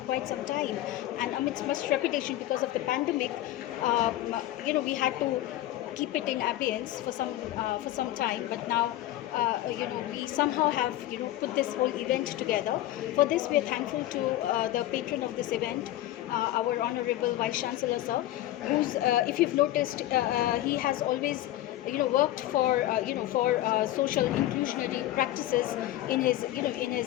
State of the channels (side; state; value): right; quieter; 14.7 dB